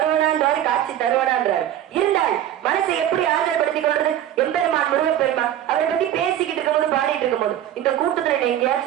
காட்சி தருவனான்றாரு. இருந்தால் மனசை எப்படி ஆதரப்படுத்திக் கொள்றது? எம்பெருமான் முருகப்பெருமான் அவரை பத்தி பேசிக்கிட்டு இருக்கும்போது பாடிட்டு இருக்கும்போது இந்த கூட்டத்துல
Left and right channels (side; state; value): left; quieter; 11.5 dB